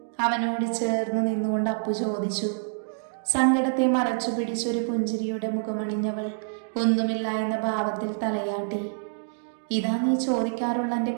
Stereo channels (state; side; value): silent; left; digital silence